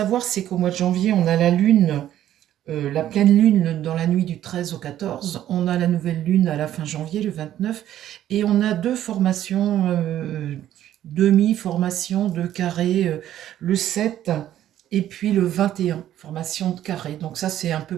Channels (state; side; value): quieter; left; 12.0 dB